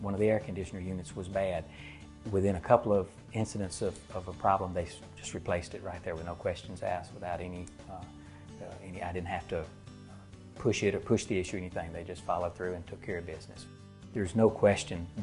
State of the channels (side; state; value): both; identical; correlation 1.00